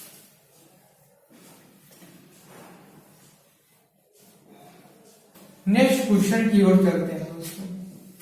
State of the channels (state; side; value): identical; both; correlation 1.00